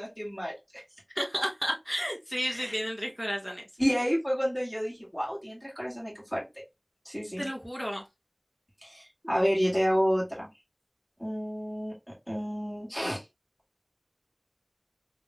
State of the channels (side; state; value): both; identical; correlation 1.00